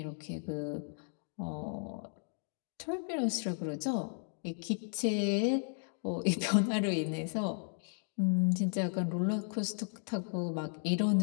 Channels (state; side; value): silent; right; 55 dB below the other